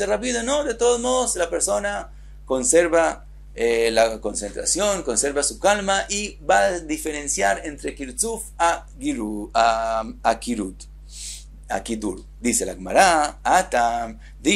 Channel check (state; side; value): identical; both; correlation 1.00